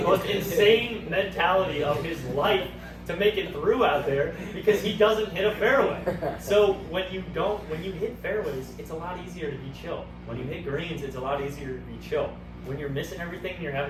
most insane mentality of his life to make it through out there, because he doesn't hit a fairway. So when you hit fairways, it's a lot easier to be chill. When you hit greens, it's a lot easier to be chill. When you're missing everything and you're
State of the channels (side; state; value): both; identical; correlation 1.00